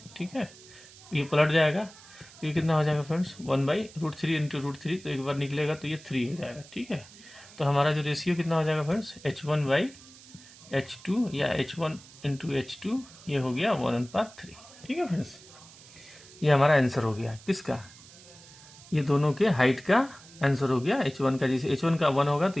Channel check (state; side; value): noise; right; hiss, 21 dB below the sound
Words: ठीक है, ये पलट जाएगा, तो ये कितना हो जाएगा फ्रेंड्स, 1/√3 इंटू √3, तो एक बार निकलेगा तो ये 3 हो जाएगा, ठीक है। तो हमारा जो रेशियो कितना हो जाएगा फ्रेंड्स, h1 बाई h2 या h1 इंटू h2, ये हो गया 1/3, ठीक है फ्रेंड्स। ये हमारा आंसर हो गया किसका, ये दोनों के हाइट का आंसर हो गया। h1 का, जैसे h1 का 1 होगा तो